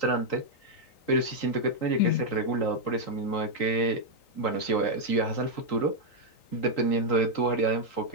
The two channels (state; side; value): late; right; 3.9 ms